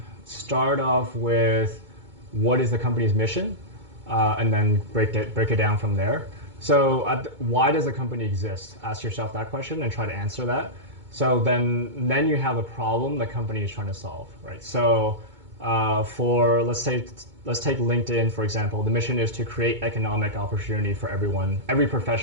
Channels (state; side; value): late; left; 2.2 ms